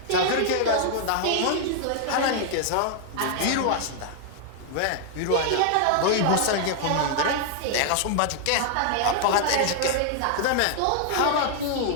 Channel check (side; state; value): both; different; correlation 0.00